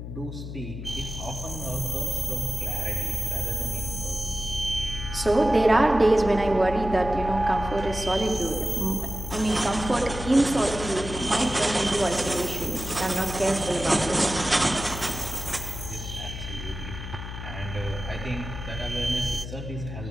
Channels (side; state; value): left; noise; hum, 9 dB below the sound